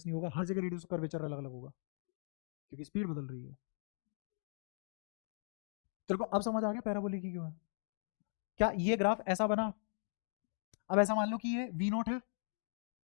नहीं होगा, हर जगह रेडियस कर्वेचर अलग अलग होगा क्योंकि स्पीड बदल रही है। तेरे को अब समझ आ गया पैराबोलिक की क्यों है, क्या ये ग्राफ ऐसा बना, अब ऐसा मान लो कि ये v0 है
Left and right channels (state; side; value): silent; right; digital silence